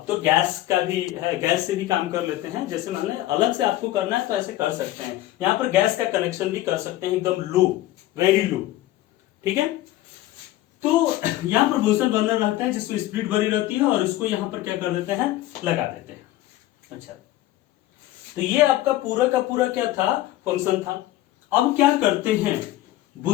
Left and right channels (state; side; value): quieter; right; 15.3 dB